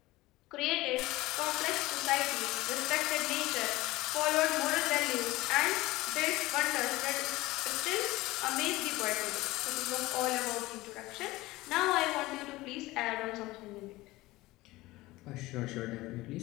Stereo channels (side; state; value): right; quieter; 19.3 dB